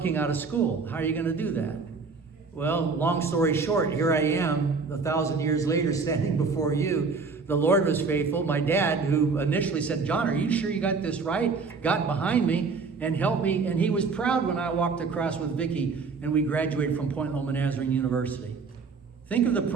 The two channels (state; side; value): quieter; left; 4.6 dB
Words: out of school. How are you going to do that? Well, long story short, here I am 1,000 years later standing before you. The Lord was faithful. My dad, who initially said, John, are you sure you got this right? Got behind me and helped me. And he was proud when I walked across with Vicki and we graduated from Point Loma Nazarene University. Think of the